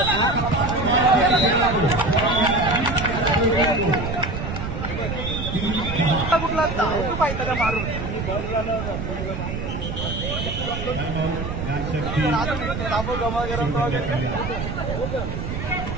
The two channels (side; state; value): right; noise; rumble, 5 dB below the sound